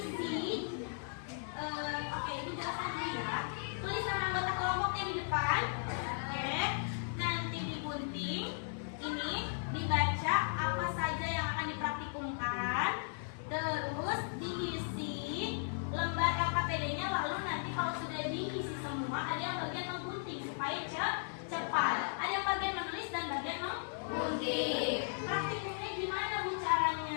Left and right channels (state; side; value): silent; right; digital silence